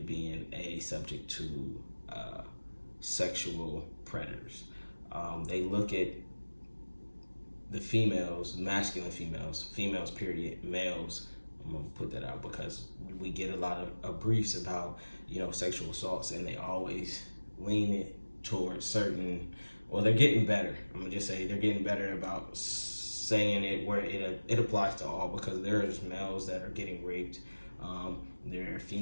being a subject to sexual predators. They look at the females, masculine females period, males, I'm gonna put that out because we get a lot of briefs about, sexual assaults, and they always lean it towards certain, well, they're getting better. I'm gonna just say they're getting better about saying it where it applies to all, because there's males that are getting raped, there are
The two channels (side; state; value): both; inverted; correlation -1.00